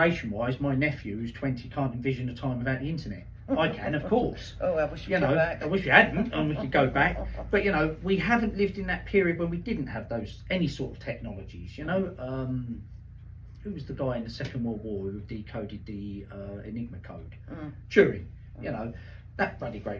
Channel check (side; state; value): both; identical; correlation 1.00